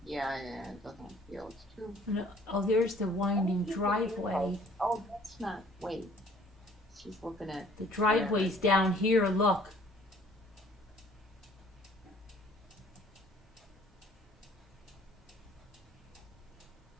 Yeah, it doesn't feel it's too. No, oh, there's the winding driveway. Oh, that's not. Wait, she's looking at. The driveway's down here. Look.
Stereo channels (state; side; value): normal; both; correlation 0.55